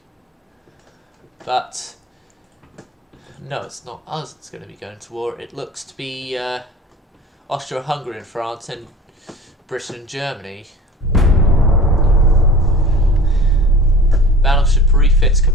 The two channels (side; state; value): both; normal; correlation 0.41